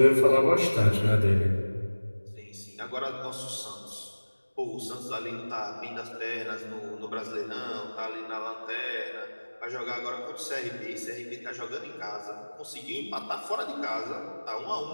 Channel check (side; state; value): both; inverted; correlation -1.00